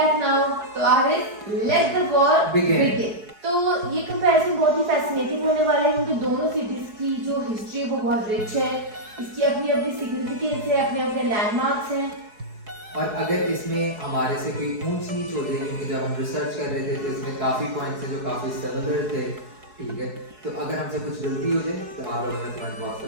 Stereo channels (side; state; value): left; late; 4.7 ms